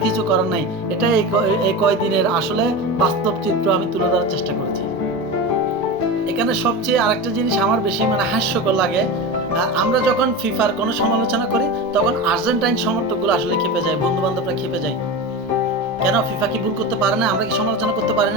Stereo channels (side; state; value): both; normal; correlation 0.24